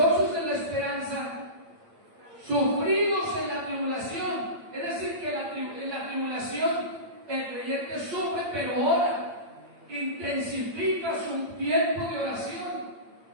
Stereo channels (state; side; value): late; left; 8.7 ms